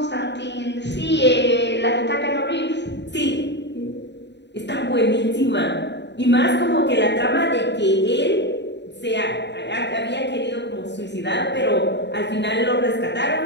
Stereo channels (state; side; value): late; right; 0.51 ms